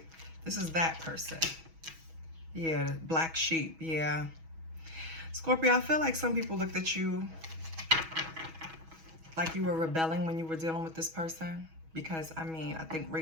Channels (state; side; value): late; left; 6.2 ms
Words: This is that person. Yeah, the black sheep, yeah. Scorpio, I feel like some people looked at you like you were rebelling when you were dealing with this person. Because, I mean, I think